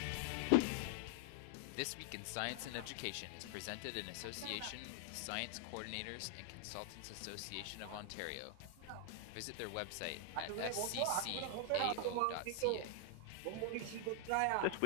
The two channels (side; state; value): both; different; correlation 0.00